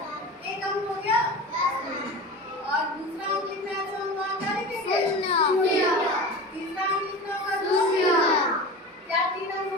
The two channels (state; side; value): normal; both; correlation 0.32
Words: एक अंक हो गया और दूसरा अंक लिखना है तो हम वहाँ क्या लिखेंगे? 0। तीसरा अंक लिखना होगा 0। क्या 3 अंक हो